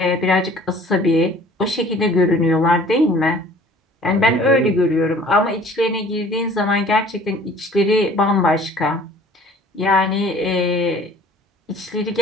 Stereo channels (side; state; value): both; normal; correlation 0.51